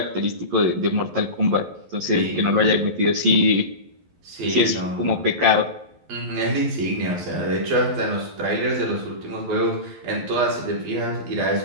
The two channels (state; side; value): late; left; 11 ms